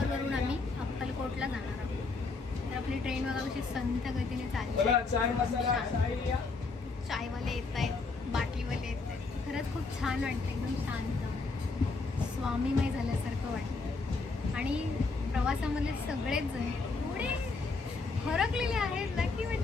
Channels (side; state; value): right; quieter; 4.0 dB